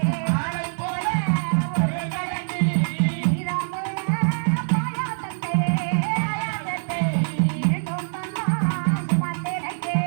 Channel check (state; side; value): silent; left; digital silence